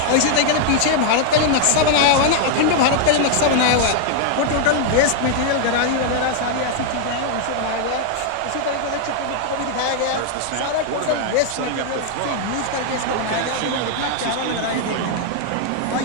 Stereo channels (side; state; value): both; different; correlation 0.00